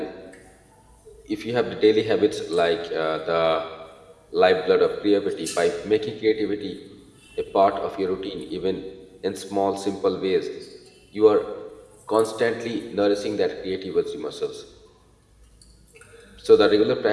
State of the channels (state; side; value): identical; both; correlation 1.00